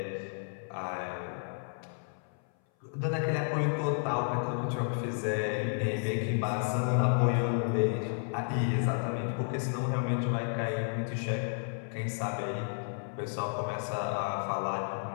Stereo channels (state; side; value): silent; right; 56 dB below the other